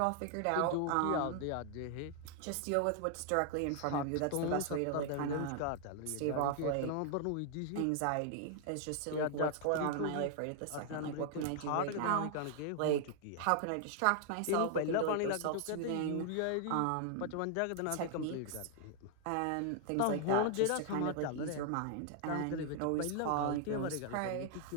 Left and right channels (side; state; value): both; different; correlation 0.00